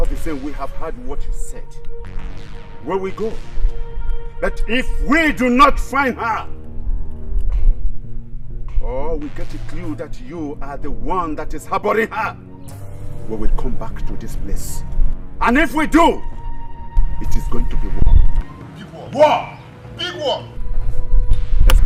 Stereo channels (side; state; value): both; identical; correlation 1.00